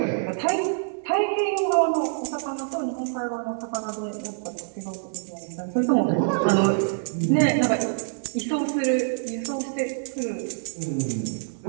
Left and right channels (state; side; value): silent; left; digital silence